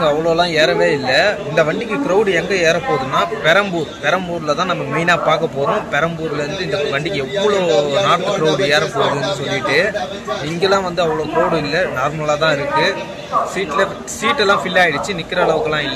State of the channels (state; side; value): identical; both; correlation 1.00